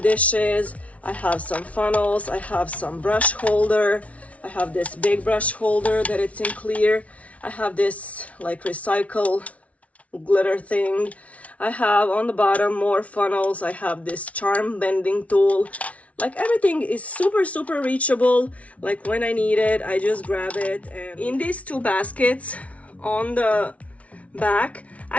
I have some funnels, I have some brush holder, I have this big brush holder that it's in clear, I have this like recycle glitter thing, I have on the bottom more funnels, I have this charm bending tool. Like everything is super reachable. Like when I need it, I just grab it. And in these two baskets on the back,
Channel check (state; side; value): late; right; 0.066 ms